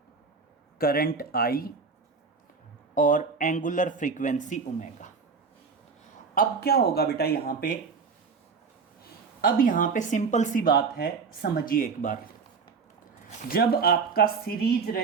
करंट आई और एंगुलर फ्रीक्वेंसी ओमेगा। अब क्या होगा बेटा यहाँ पे, अब यहाँ पे सिंपल सी बात है, समझिए एक बार। जब आपका सीरीज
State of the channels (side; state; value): left; quieter; 5.1 dB